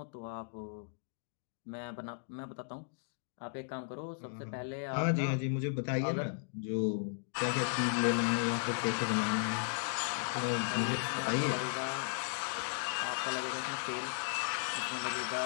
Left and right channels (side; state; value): right; silent; digital silence